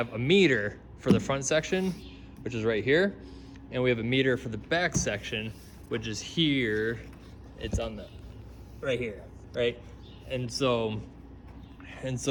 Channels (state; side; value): identical; both; correlation 1.00